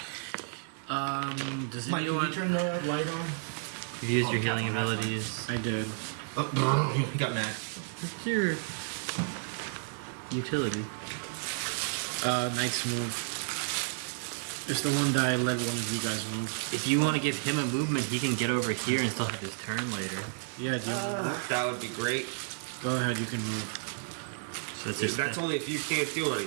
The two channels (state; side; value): silent; left; 57 dB below the other